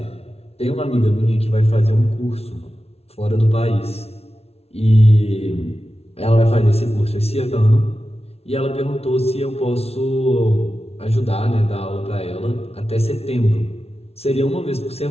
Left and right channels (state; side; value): late; right; 0.30 ms